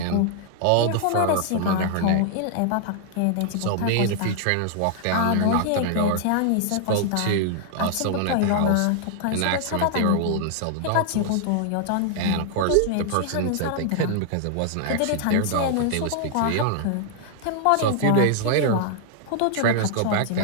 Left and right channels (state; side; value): different; both; correlation -0.01